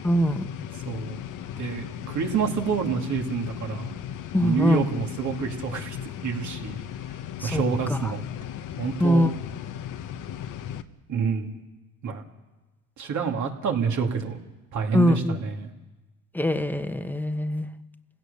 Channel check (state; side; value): normal; both; correlation 0.65